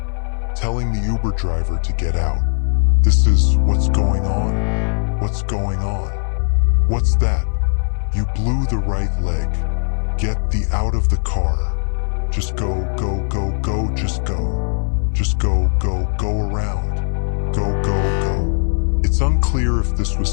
telling the Uber driver to get out. "This is what's going on? What's going on? What's that? You blew the right leg. Get the out of the car. Just go, go, go, go, just go. Just go, go, go around. Go, go, go." It's unclear if this was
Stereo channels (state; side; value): silent; right; 58 dB below the other